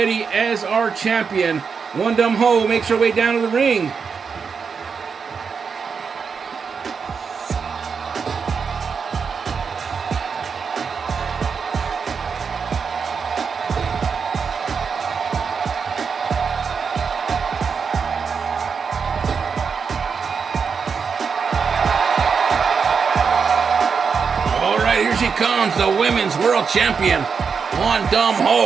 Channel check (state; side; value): quieter; left; 5.8 dB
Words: as our champion. One Dumb Ho makes her way down to the ring. All right, here she comes, the women's world champion, One Dumb